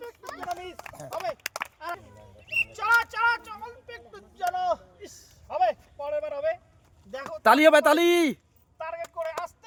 তালি হবে তালি। টার্গেট করে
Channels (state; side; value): identical; both; correlation 1.00